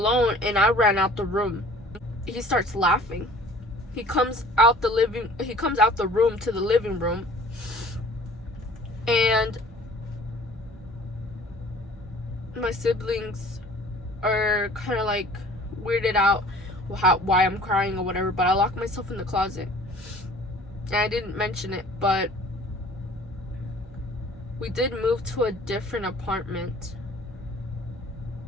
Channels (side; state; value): both; normal; correlation 0.49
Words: and I ran out the room. He starts laughing. He comes out the room to the living room, and my siblings are kind of like weirded out why I'm crying or whatever. But I locked myself in the closet, and I didn't mention it, but we did move to a different apartment